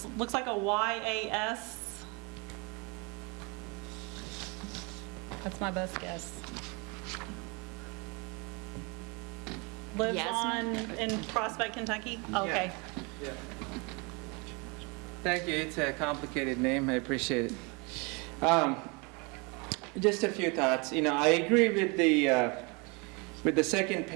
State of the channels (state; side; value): quieter; left; 30.2 dB